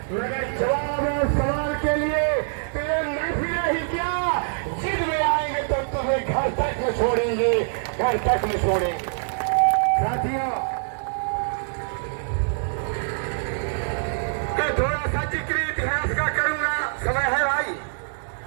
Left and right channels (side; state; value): left; silent; digital silence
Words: मगर जवाब और सवाल के लिए तो ये महफिल ही क्या, जिद में आएंगे तो तुम्हें घर तक में छोड़ेंगे, घर तक में छोड़ेंगे। साथियों, मैं थोड़ा सा जिक्र इतिहास का करूंगा। समय है भाई,